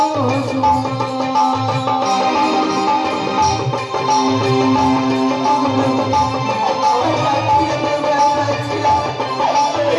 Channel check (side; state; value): both; identical; correlation 1.00